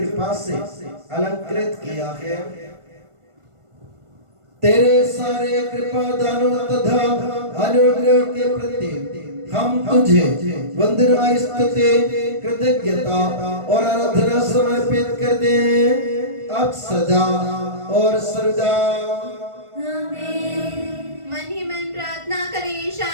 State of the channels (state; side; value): late; left; 1.4 ms